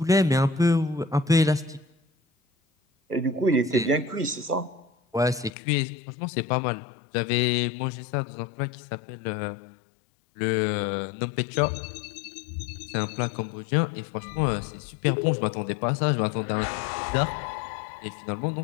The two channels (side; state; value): right; drops out; at 5.5 s